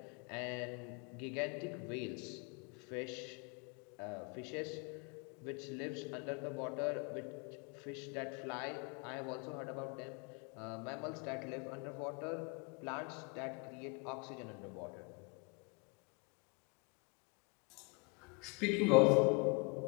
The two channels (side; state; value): right; quieter; 30.7 dB